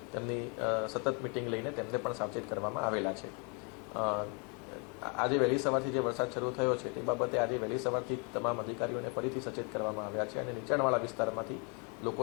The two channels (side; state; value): right; quieter; 34.9 dB